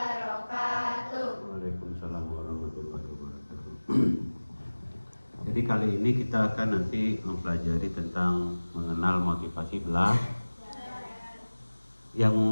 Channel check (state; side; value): inverted; both; correlation -1.00